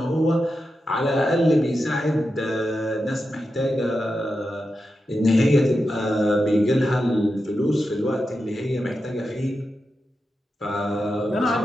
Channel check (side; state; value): both; normal; correlation 0.89